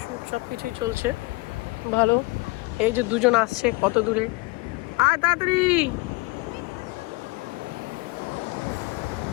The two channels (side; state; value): right; quieter; 25.4 dB